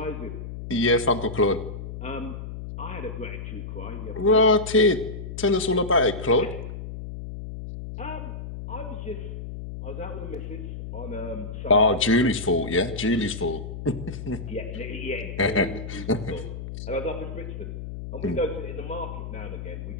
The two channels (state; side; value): noise; left; hum, 8 dB below the sound